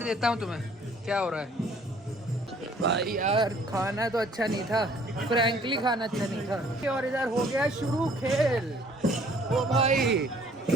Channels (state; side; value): normal; both; correlation 0.57